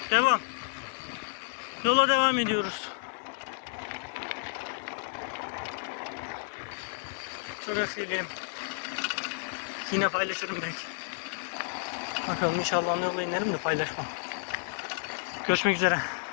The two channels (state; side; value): silent; right; 57 dB below the other